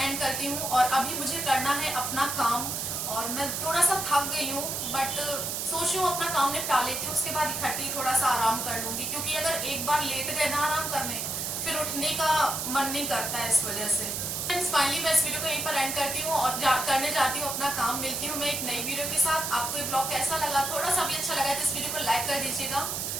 करती हूँ, और अभी मुझे करना है अपना काम, और मैं थोड़ा सा थक गई हूँ, बट सोच रही हूँ अपना काम निपटा लेती हूँ, उसके बाद इकट्ठी थोड़ा सा आराम कर लूंगी, क्योंकि अगर एक बार लेट गए ना आराम करने, फिर उठने का मन नहीं करता है इस वजह से। फाइनली मैं इस वीडियो को यहीं पर एंड करती हूँ और करने जाती हूँ अपना काम। मिलती हूँ मैं एक नई वीडियो के साथ। आपको ये ब्लॉग कैसा लगा, थोड़ा सा भी अच्छा लगा तो इस वीडियो को लाइक कर दीजिएगा।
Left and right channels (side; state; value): right; noise; hiss, 2 dB below the sound